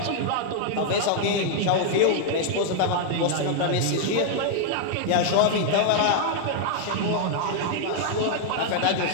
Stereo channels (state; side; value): different; both; correlation 0.00